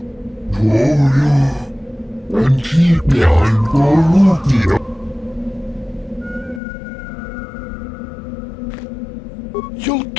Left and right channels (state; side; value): drops out; right; at 6.6 s